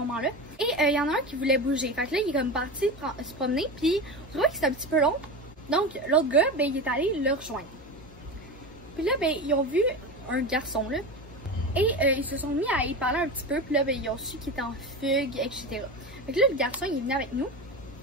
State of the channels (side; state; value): both; normal; correlation 0.25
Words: et il y en a un qui voulait bouger. Fait que là il est comme parti se promener puis je trouvais que c'était un petit peu long. Donc l'autre gars, ben il est allé le rejoindre. Puis là, ben, ils ont vu un garçon, là, et ils se sont mis à y parler un petit peu, puis là, ben, ils ont su qu'il était en fugue, etc. Fait que là, le garçon, il est venu avec nous,